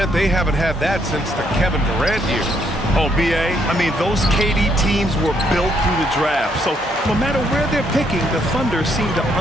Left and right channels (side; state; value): both; normal; correlation 0.72